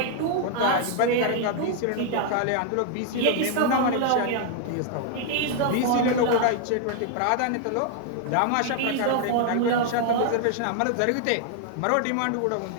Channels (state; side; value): different; both; correlation 0.00